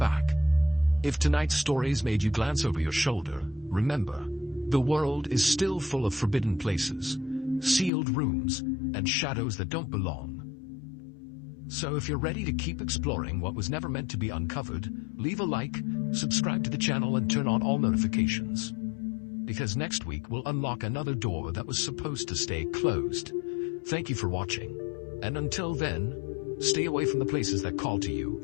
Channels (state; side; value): drops out; right; at 7.9 s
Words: If tonight's stories made you glance over your shoulder, remember, the world is still full of forbidden places, sealed rooms, and shadows that don't belong. So if you're ready to keep exploring what was never meant to be uncovered, leave a like, subscribe to the channel, and turn on all notifications. Because next week we'll unlock another door that was supposed to stay closed. Thank you for watching, and until then, stay away from the places that call to you